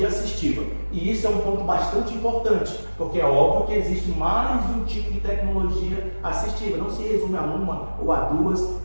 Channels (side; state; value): both; inverted; correlation -1.00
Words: assistiva. E isso é um ponto bastante importante, porque é óbvio que existe mais de um tipo de tecnologia assistiva. Não se resume a uma ou a duas,